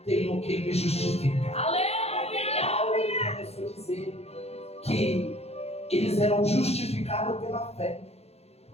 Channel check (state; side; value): late; right; 0.30 ms